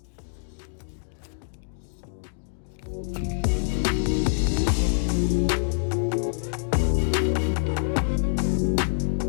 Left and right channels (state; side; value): silent; right; digital silence